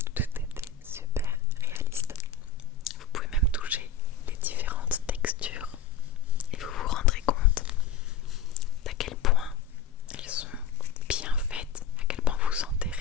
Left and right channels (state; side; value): quieter; right; 6.6 dB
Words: tout était super réaliste. Vous pouvez même toucher les différentes textures et vous vous rendrez compte d'à quel point elles sont bien faites, à quel point vous sentez